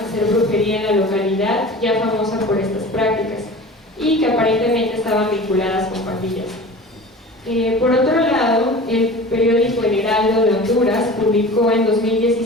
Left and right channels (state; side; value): normal; both; correlation 0.38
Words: brujería en la localidad, ya famosa por estas prácticas, y que aparentemente estaban vinculadas con pandillas. Por otro lado, el periódico El Heraldo de Honduras publicó en